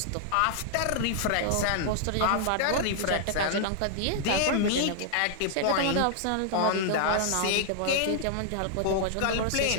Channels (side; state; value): both; different; correlation -0.01